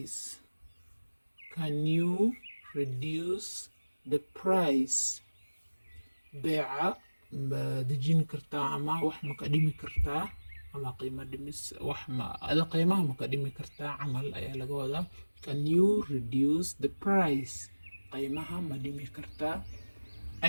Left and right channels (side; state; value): both; inverted; correlation -1.00